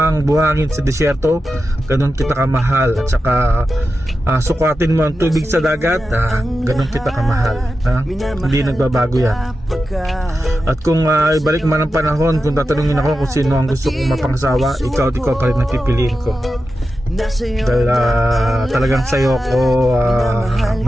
buhangin sa desyerto, ganun kita kamahal. At saka sukatin mo ang tubig sa dagat, ganun kita kamahal. Hindi nagbabago yan. At kung ibalik man ang panahon, kung tatanungin ako kung sino ang gusto kong mapangasawa, ikaw pa rin ang pipiliin ko. Dahil talagang sa'yo ako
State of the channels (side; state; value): both; normal; correlation 0.91